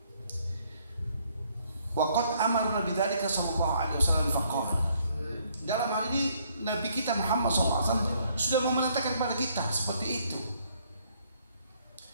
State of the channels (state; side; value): inverted; both; correlation -0.67